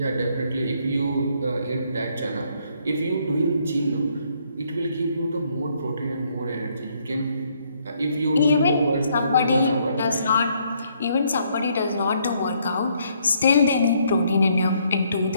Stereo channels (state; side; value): inverted; both; correlation -0.70